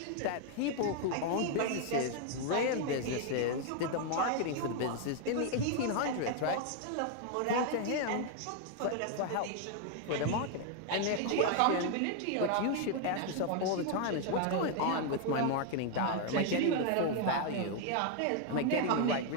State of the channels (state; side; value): different; both; correlation 0.00